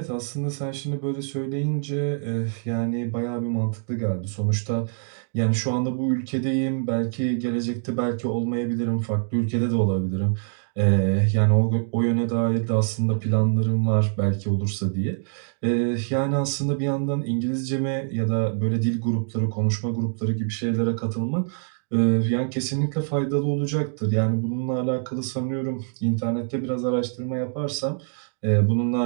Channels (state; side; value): silent; left; digital silence